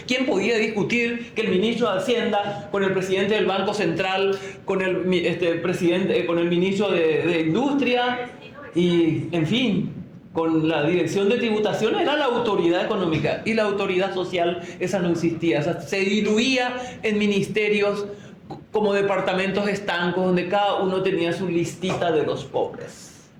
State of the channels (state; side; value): identical; both; correlation 1.00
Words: ¿Quién podía discutir que el ministro de Hacienda, con el presidente del Banco Central, con el ministro de Industria y, en fin, con la dirección de tributación, era la autoridad económica? Y la autoridad social, esa no existía. O sea, se diluía en ministerios como departamentos estancos donde cada uno tenía su listita de los pobres.